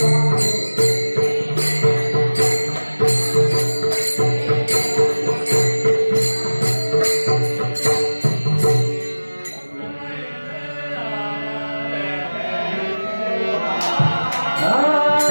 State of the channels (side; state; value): both; inverted; correlation -1.00